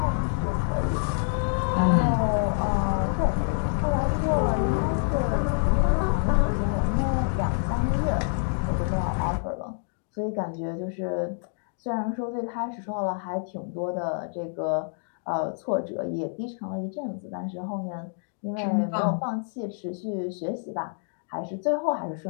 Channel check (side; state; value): right; silent; digital silence